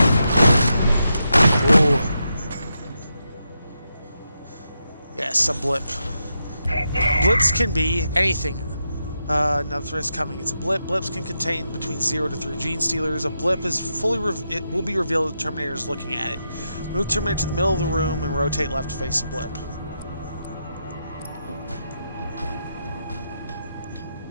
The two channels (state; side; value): inverted; both; correlation -0.85